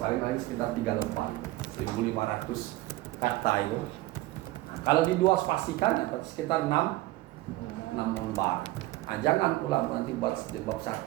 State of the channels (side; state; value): left; quieter; 18.2 dB